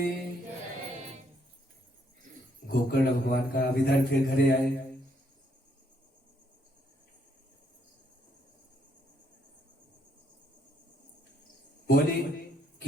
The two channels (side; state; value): both; normal; correlation 0.71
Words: गोकर्ण भगवान का अब इधर फिर घरे आए। बोले